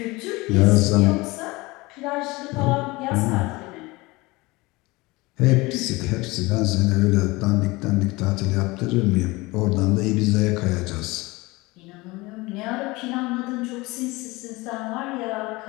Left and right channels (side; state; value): right; quieter; 22.5 dB